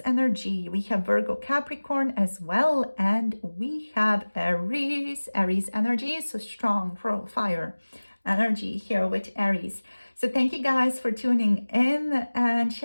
energy, we have Virgo, Capricorn as well, and we have Aries energy, so strong fire energy here with Aries. So thank you guys for tuning in and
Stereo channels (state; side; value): inverted; both; correlation -1.00